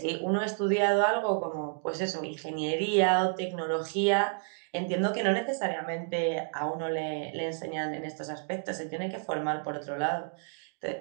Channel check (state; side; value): silent; left; digital silence